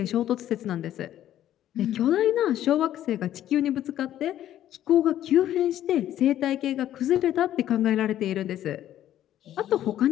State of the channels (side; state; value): right; quieter; 12.1 dB